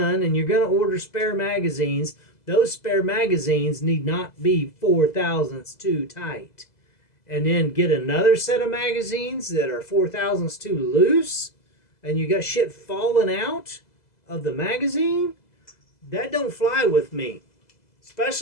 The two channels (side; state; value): right; late; 2.0 ms